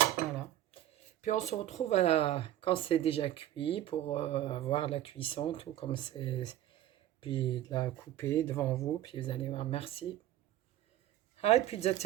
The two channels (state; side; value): quieter; left; 13.0 dB